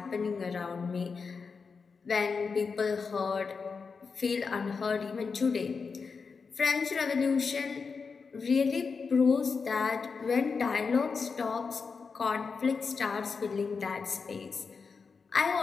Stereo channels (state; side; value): quieter; right; 5.1 dB